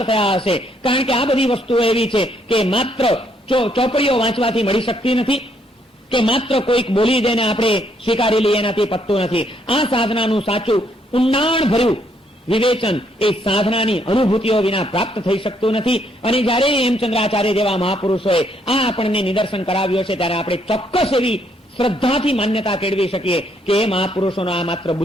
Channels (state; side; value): normal; both; correlation 0.71